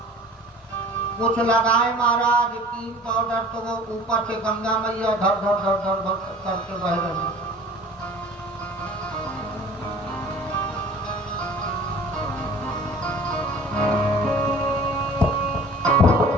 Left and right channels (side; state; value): both; normal; correlation 0.46